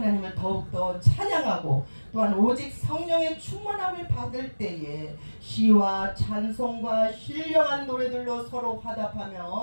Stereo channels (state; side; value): inverted; both; correlation -1.00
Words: 더욱더 찬양하고 또한 오직 성령의 충만함을 받을 때에 시와 찬송과 신령한 노래들로 서로